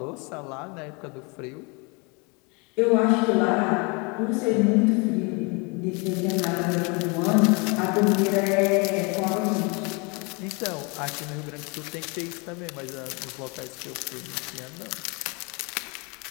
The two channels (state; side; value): quieter; right; 30.5 dB